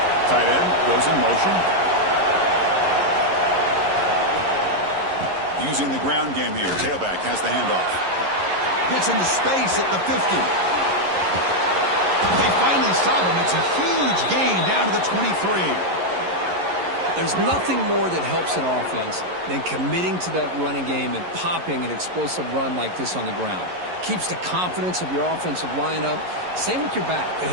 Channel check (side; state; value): left; late; 11 ms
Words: Tight end goes in motion. Using the ground game here. Tailback has the handoff. Gets into space at the 50. They finally stop him. It's a huge gain down to the 23. There's nothing more that helps an offense than committing to that running game and popping an explosive run like this on the ground. Keeps the confidence of your offensive lineup. Same with your back. It